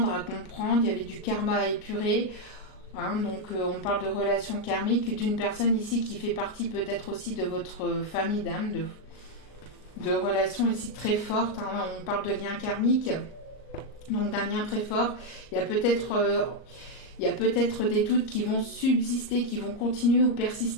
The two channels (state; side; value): late; right; 38 ms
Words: à comprendre, il y avait du karma à épurer. Hein, donc on parle de relations karmiques, d'une personne ici qui fait partie peut-être aussi de votre famille d'âme, de relations ici très fortes. Hein, on parle de liens karmiques, donc d'un lien très fort. Il y a peut-être des doutes qui vont subsister, qui vont continuer ou